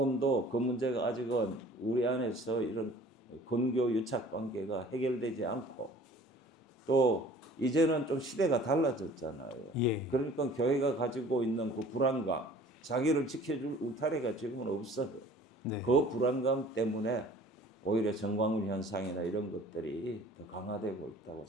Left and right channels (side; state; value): both; normal; correlation 0.49